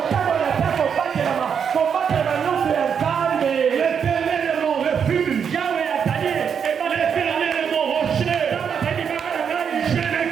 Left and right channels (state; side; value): quieter; left; 7.2 dB